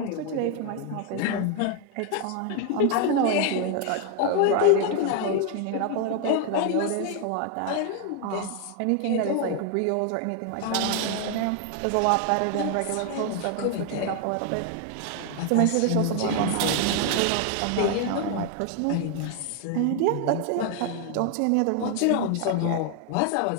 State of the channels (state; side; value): different; both; correlation 0.00